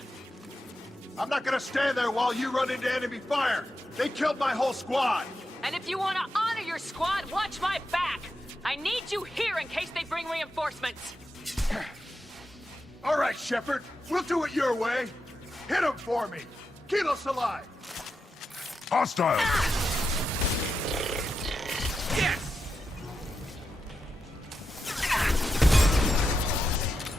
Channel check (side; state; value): both; normal; correlation 0.88